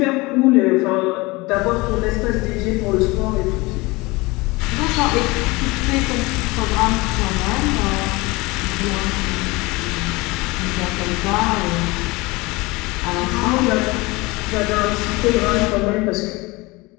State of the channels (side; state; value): right; quieter; 23.3 dB